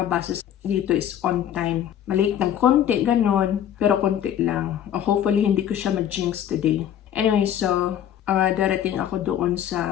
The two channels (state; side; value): quieter; right; 10.2 dB